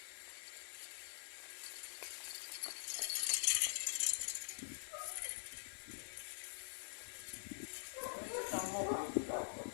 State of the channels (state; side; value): silent; right; digital silence